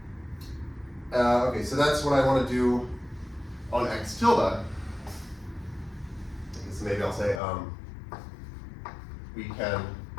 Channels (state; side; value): drops out; right; at 7.4 s